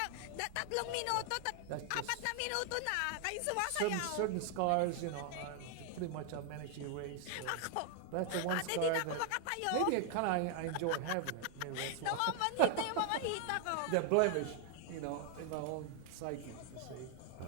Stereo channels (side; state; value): both; different; correlation 0.00